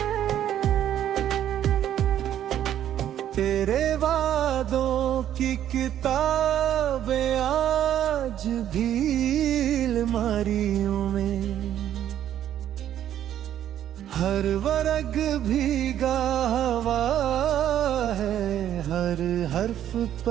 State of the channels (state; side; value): quieter; left; 10.9 dB